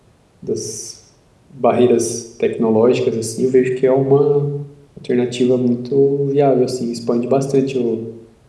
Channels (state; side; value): identical; both; correlation 1.00